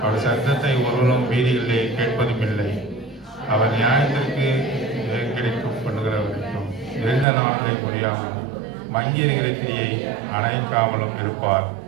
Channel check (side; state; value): left; drops out; at 7.2 s